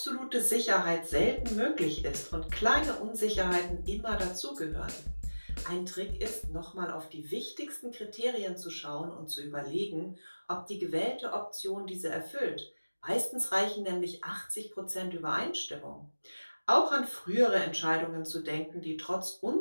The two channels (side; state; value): both; inverted; correlation -1.00